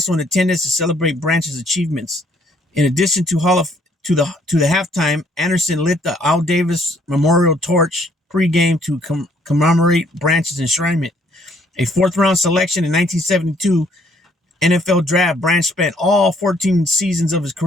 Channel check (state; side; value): normal; both; correlation 0.65